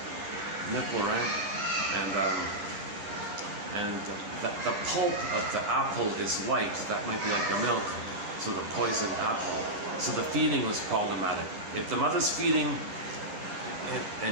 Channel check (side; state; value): left; late; 10 ms